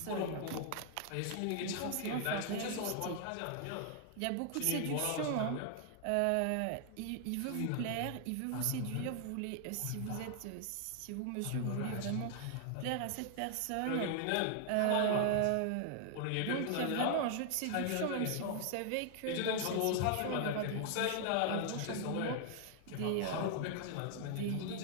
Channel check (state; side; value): different; both; correlation 0.00